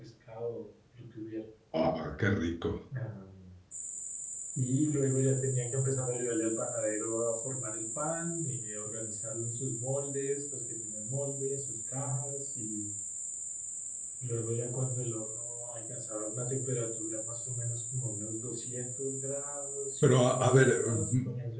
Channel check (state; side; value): identical; both; correlation 1.00